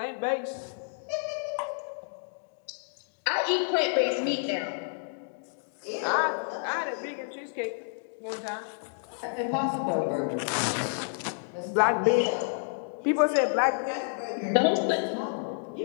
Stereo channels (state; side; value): silent; right; digital silence